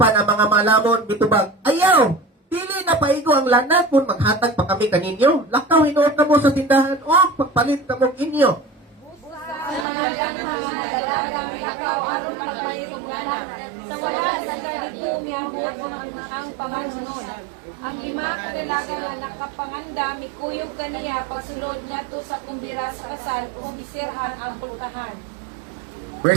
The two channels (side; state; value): left; drops out; at 9.9 s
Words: ang mga malamon bitubag, ayaw, dili na paigo ang lana kung maghatag pa kami kaninyo. Lakaw hinuot na mo sa tindahan o pagpalit na mo inyo. Lakaw aron pagpalit sa wala sa kadidiyong ang pamanunod. Ang lima kailangan na nakapanganda, mikuyog kaniya, pasulod na to sa kumbira sa kasal, o bisirhan ang pultahan.